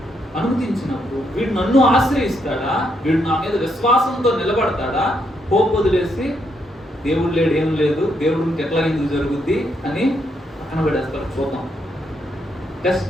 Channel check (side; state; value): both; normal; correlation 0.77